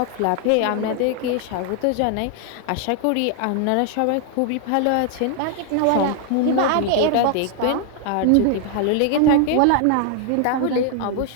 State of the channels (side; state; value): both; different; correlation 0.00